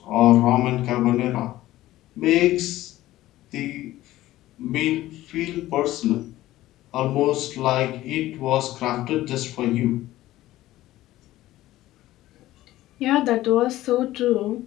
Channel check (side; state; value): right; quieter; 15.7 dB